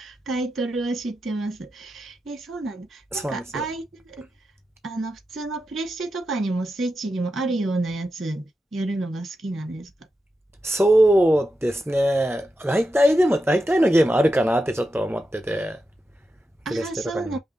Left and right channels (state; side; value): normal; both; correlation 0.89